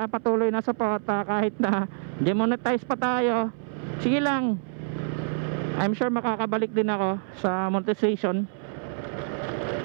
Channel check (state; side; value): silent; left; 60 dB below the other